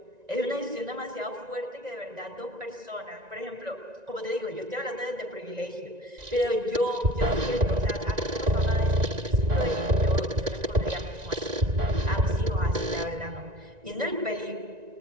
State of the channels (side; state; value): left; late; 1.9 ms